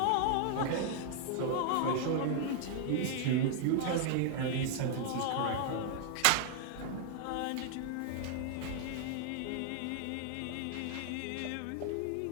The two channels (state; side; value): different; both; correlation 0.00